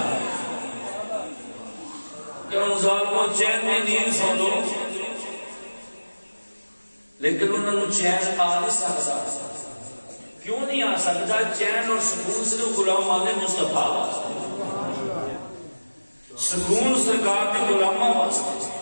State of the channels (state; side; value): inverted; both; correlation -1.00